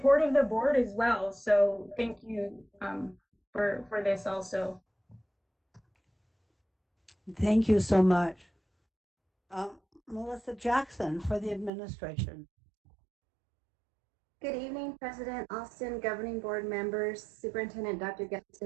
of the board as well. So thank you for this also. Thank you so much. Melissa Jackson for the administration. Good evening, President Alston, governing board members, Superintendent Dr.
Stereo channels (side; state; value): left; drops out; at 11.7 s